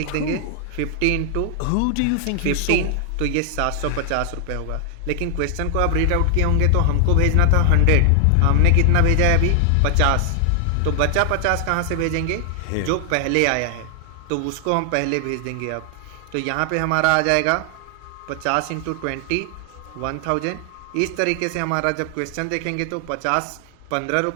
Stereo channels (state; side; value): different; both; correlation 0.00